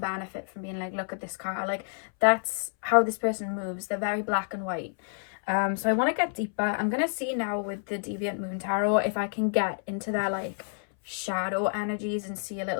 from being like, look at this car. Like, that's how this person moves. They're very black and white. So I want to get deeper. I'm going to see now with the Deviant Moon Tarot if I can get into their like shadow energies and see a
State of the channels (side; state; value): right; silent; 59 dB below the other